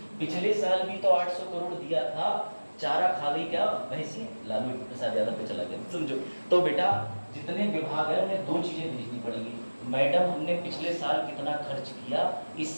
पिछले साल भी तो 800 करोड़ दिया था, चारा खा गई क्या भैंसी? लालू प्रसाद यादव पे चला गया, समझो। तो बेटा जितने विभाग है उन्हें दो चीजें भेजनी पड़ेगी। मैडम हमने पिछले साल कितना खर्च किया, इस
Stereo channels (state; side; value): inverted; both; correlation -1.00